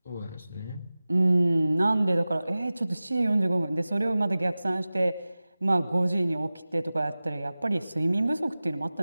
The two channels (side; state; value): both; inverted; correlation -0.97